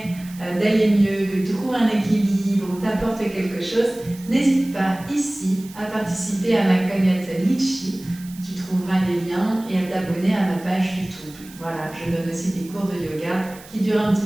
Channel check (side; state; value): right; noise; hiss, 20 dB below the sound